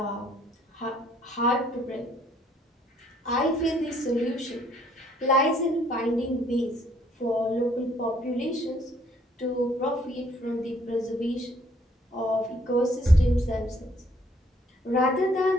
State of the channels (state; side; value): normal; both; correlation 0.63